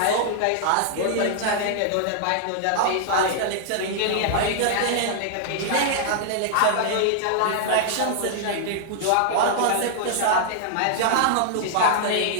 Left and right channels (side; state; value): both; different; correlation -0.01